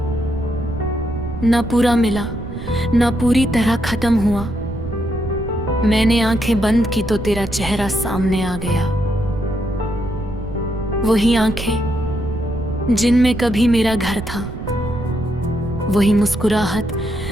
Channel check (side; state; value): right; noise; rumble, 9 dB below the sound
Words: ना पूरा मिला ना पूरी तरह खत्म हुआ। मैंने आंखें बंद की तो तेरा चेहरा सामने आ गया। वही आंखें जिनमें कभी मेरा घर था, वही मुस्कुराहट